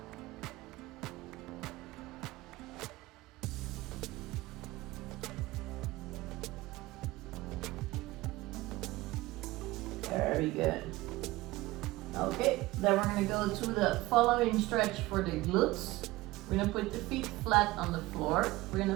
Very good. Okay, then we're gonna go to the following stretch for the glutes. We're gonna put the feet flat on the floor. We're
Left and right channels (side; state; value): left; quieter; 19.2 dB